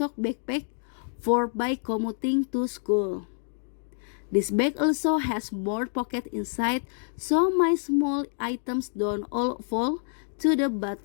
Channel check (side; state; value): right; silent; digital silence